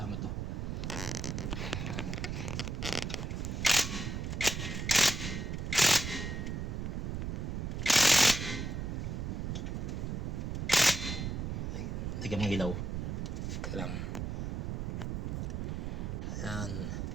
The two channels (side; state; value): right; noise; rumble, 2 dB below the sound